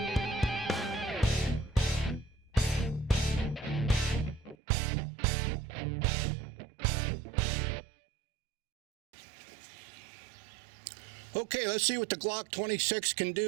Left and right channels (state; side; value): drops out; left; at 4.5 s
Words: Okay, let's see what the Glock 26 can